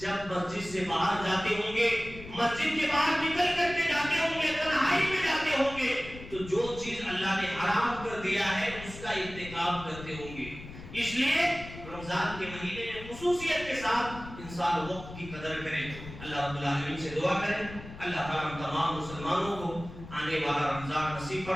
مسجد سے باہر جاتے ہوں گے، مسجد کے باہر نکل کر کے جاتے ہوں گے، تنہائی میں جاتے ہوں گے تو جو چیز اللہ نے حرام کر دیا ہے اس کا ارتکاب کرتے ہوں گے. اس لیے رمضان کے مہینے میں خصوصیت کے ساتھ انسان وقت کی قدر کرے. اللہ رب العالمین سے دعا کریں اللہ تعالیٰ تمام مسلمانوں کو آنے والا رمضان نصیب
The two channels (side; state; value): left; noise; rumble, 14 dB below the sound